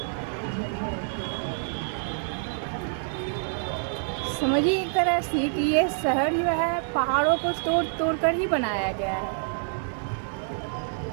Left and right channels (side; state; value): left; silent; 60 dB below the other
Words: समझिए एक तरह से कि ये शहर जो है पहाड़ों को तोड़ तोड़ कर ही बनाया गया है।